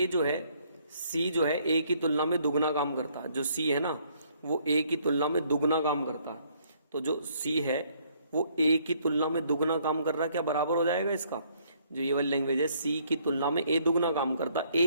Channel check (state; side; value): inverted; both; correlation -0.66